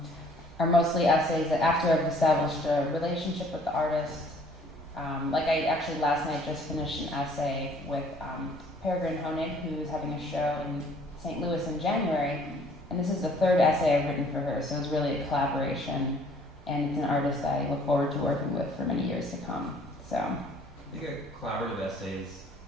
mostly essays that after I've established a relationship with the artist. Like I actually last night just finished an essay with Peregrine Honig, who's having a show in St. Louis in January, and this is the 3rd essay I've written for her, so it's really a collaboration, and it's an artist that I look forward to working with for many years to come. So I think a collaborative essays,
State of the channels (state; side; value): normal; both; correlation 0.57